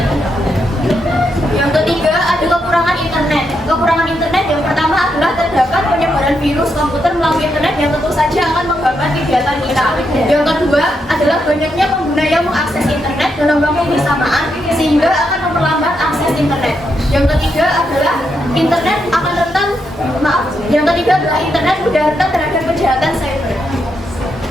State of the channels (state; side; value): normal; both; correlation 0.81